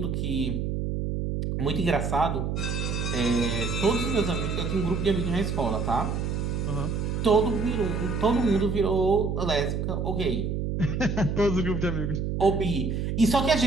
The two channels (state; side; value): noise; right; hum, 1 dB below the sound